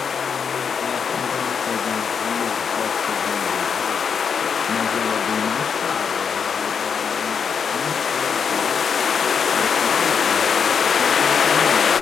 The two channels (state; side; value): quieter; right; 6.5 dB